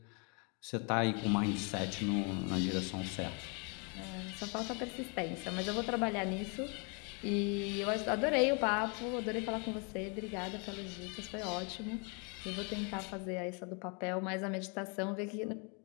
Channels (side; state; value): right; quieter; 34.8 dB